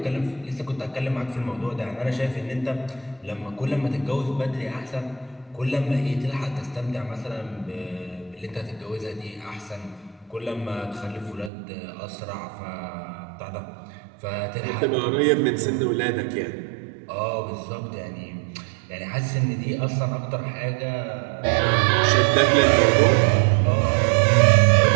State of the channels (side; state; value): left; drops out; at 11.5 s